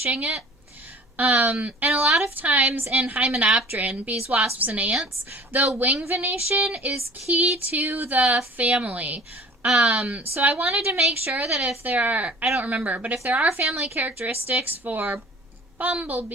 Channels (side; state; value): both; normal; correlation 0.46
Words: it. And a lot of times in Hymenopteran, bees, wasps, and ants, the wing venation is key to the family. So I wanted to make sure that if there are, I don't remember, but if there are family characteristics for